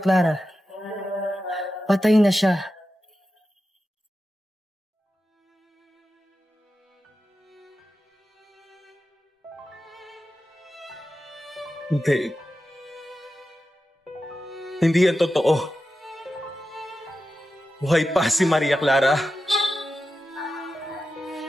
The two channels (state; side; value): normal; both; correlation 0.91